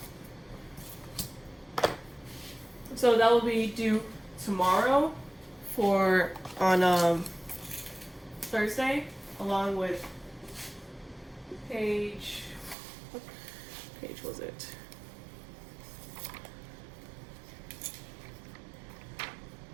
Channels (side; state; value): left; drops out; at 12.8 s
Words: So that will be due tomorrow on Thursday, along with page, what page was it?